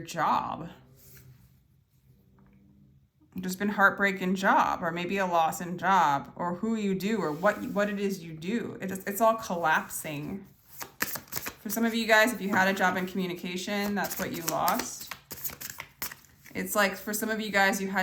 There's been heartbreak in job, or maybe a loss in job, or who you do, or what it is you do. It's all collapsing. For some of you guys, if you had a job in communication, that's what you lost. It's like for some of you guys, you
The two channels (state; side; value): identical; both; correlation 1.00